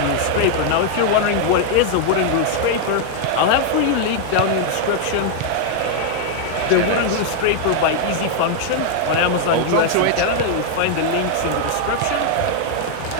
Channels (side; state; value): both; different; correlation 0.00